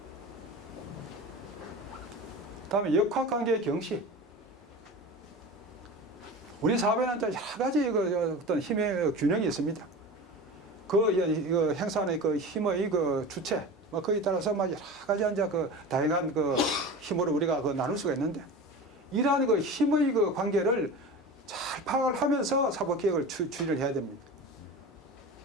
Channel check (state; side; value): normal; both; correlation 0.32